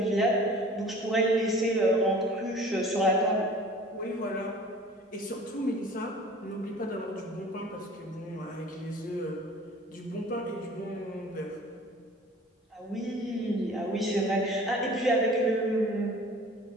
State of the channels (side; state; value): both; normal; correlation 0.46